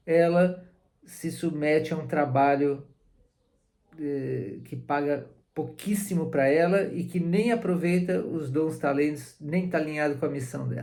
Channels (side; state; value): both; identical; correlation 1.00